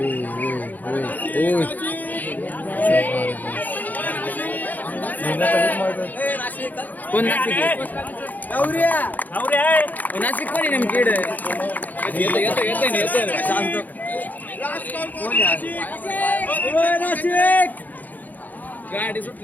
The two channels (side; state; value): right; late; 0.083 ms